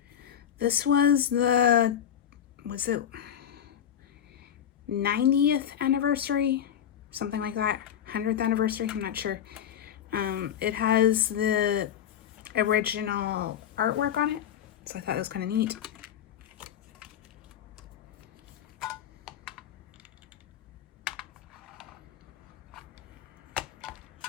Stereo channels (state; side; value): quieter; right; 9.6 dB